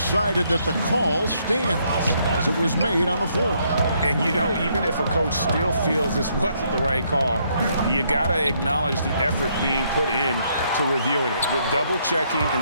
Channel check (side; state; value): both; inverted; correlation -0.72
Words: that the call stands as it was made on the floor. And, you know, even if a coach still feels this wasn't the right call, you got to acknowledge the effort being put in to reviewing it. With double checking, and